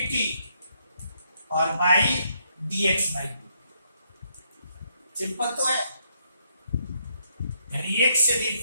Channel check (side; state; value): both; inverted; correlation -0.74